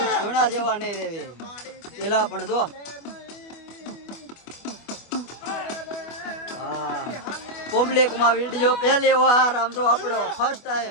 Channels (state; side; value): late; right; 25 ms